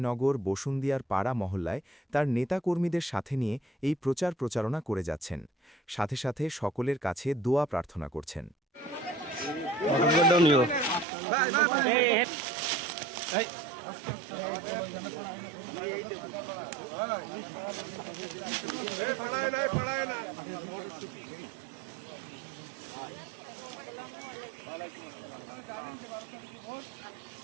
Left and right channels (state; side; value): drops out; left; at 11.1 s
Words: বসুন্দিয়ার পাড়া মহল্লায় তার নেতাকর্মীদের সাথে নিয়ে এই প্রচারণা করে যাচ্ছেন। সাথে সাথে সকলের কাছে দোয়া প্রার্থনা করছেন।